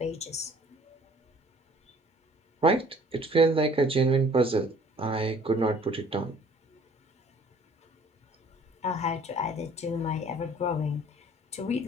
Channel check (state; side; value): normal; both; correlation 0.54